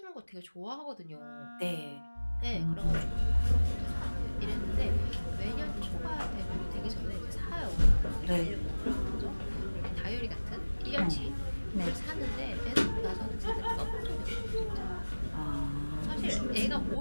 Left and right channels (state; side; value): inverted; both; correlation -1.00